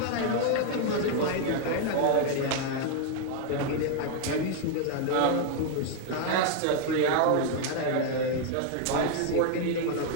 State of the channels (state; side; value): different; both; correlation 0.00